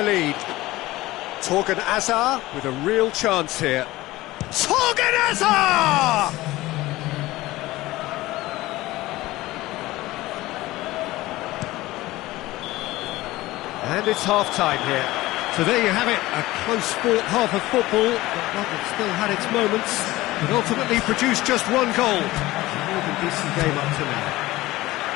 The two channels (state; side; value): quieter; right; 18.1 dB